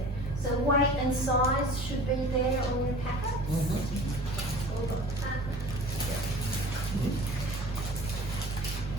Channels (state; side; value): normal; both; correlation 0.42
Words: So weight and size should be there on your packets. All got that.